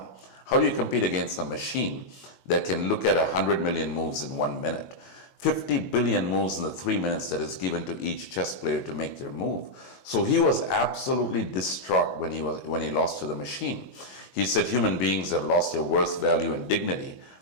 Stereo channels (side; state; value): right; late; 22 ms